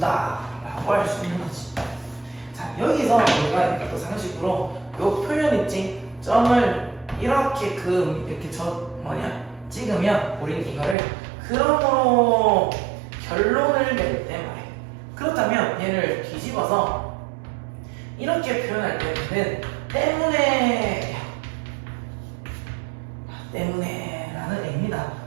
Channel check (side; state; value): left; drops out; at 11.0 s